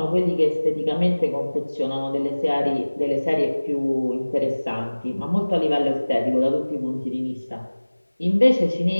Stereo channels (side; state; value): both; inverted; correlation -1.00